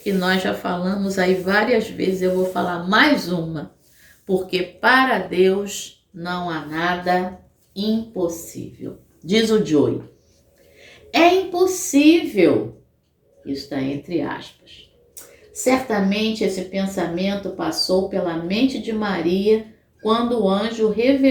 nós já falamos aí várias vezes, eu vou falar mais uma, porque para Deus não há nada impossível. Diz o Joey, é impossível, isso está entre aspas. Certamente esse pensamento passou pela mente de Maria quando o anjo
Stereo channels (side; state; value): both; identical; correlation 1.00